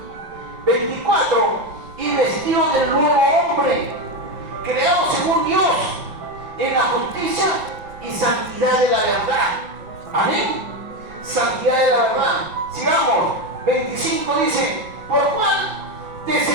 24. Y vestidos del nuevo hombre, creado según Dios, en la justicia y santidad de la verdad. Amén. Santidad de la verdad. Sigamos. 25 dice, por lo cual,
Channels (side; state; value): left; late; 5.6 ms